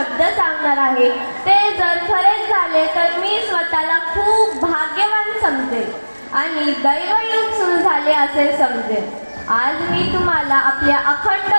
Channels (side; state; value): both; inverted; correlation -1.00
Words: सांगणार आहे ते जर खरेच झाले तर मी स्वतःला खूप भाग्यवान समजेल आणि दैवयुग सुरू झाले असे समजेल. आज मी तुम्हाला आपल्या अखंड